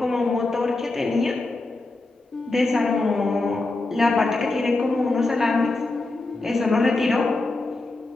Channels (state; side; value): quieter; right; 3.1 dB